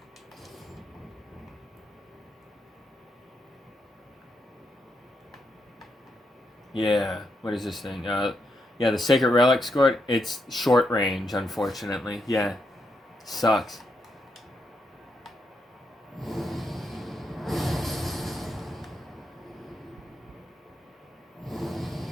Yeah, what is this thing? Yeah, the Sacred Relic score, it's short range, unfortunately. Yeah, sucks.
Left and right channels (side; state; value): both; normal; correlation 0.81